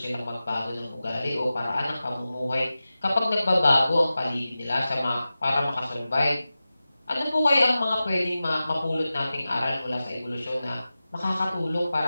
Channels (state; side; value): inverted; both; correlation -0.95